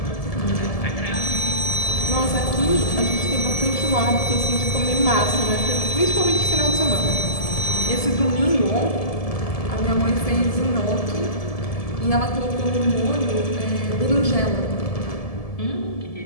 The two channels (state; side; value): late; right; 1.7 ms